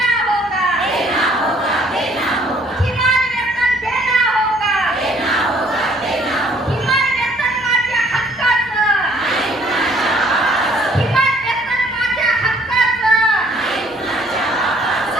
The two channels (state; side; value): normal; both; correlation 0.60